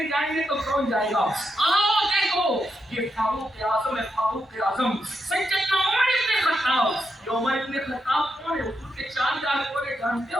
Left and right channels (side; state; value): both; normal; correlation 0.83